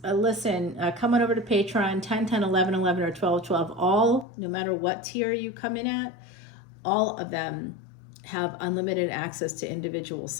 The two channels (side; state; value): right; drops out; at 4.2 s